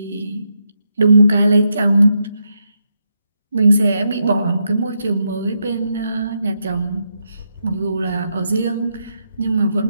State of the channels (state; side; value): inverted; both; correlation -0.82